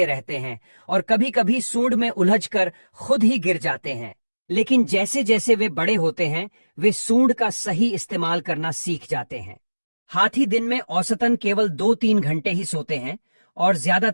रहते हैं और कभी कभी सूंड में उलझकर खुद ही गिर जाते हैं। लेकिन जैसे जैसे वे बड़े होते हैं, वे सूंड का सही इस्तेमाल करना सीख जाते हैं। हाथी दिन में औसतन केवल 2-3 घंटे ही सोते हैं और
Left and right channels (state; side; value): inverted; both; correlation -1.00